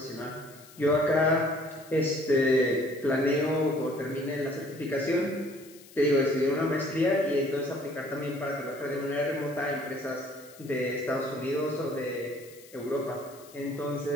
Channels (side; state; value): left; noise; hiss, 22 dB below the sound